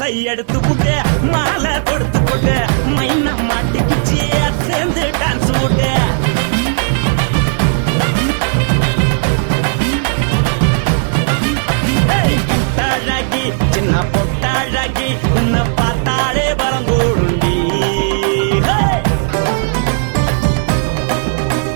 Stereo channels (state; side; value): silent; left; digital silence